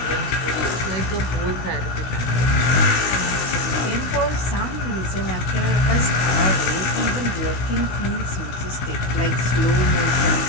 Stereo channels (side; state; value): right; late; 16 ms